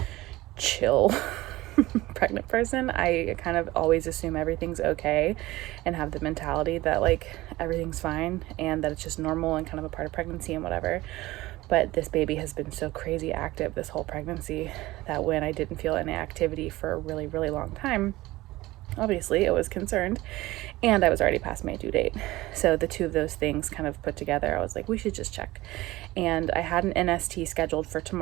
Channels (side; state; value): left; quieter; 18.4 dB